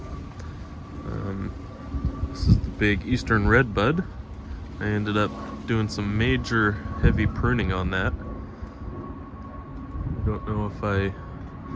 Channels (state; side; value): identical; both; correlation 1.00